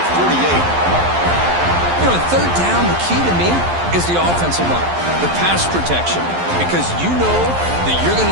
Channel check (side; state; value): left; late; 11 ms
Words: 48. You know, third down, the key to me is the offensive line, the pass protection, because you know that you're going